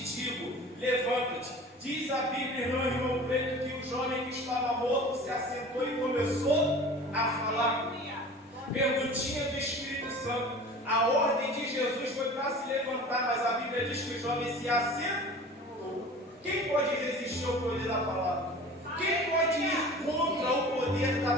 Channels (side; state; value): both; normal; correlation 0.40